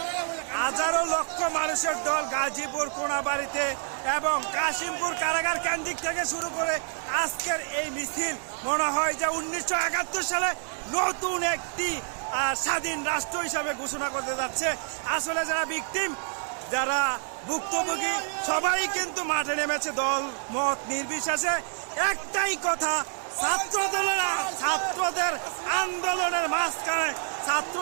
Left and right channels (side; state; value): left; silent; 60 dB below the other